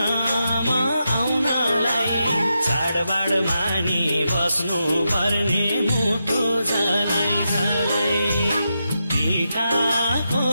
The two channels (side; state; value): both; inverted; correlation -0.86